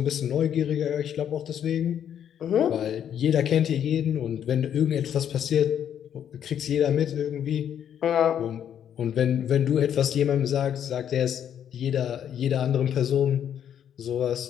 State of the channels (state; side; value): quieter; right; 9.4 dB